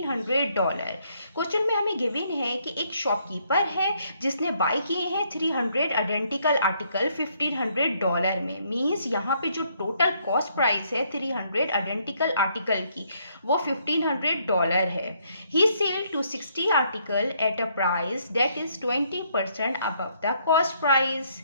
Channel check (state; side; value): inverted; both; correlation -0.70